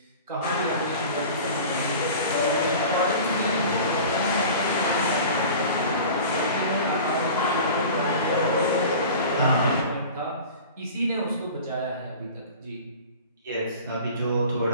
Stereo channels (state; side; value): inverted; both; correlation -0.39